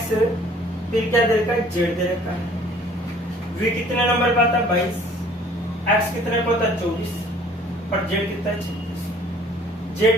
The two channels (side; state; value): both; normal; correlation 0.54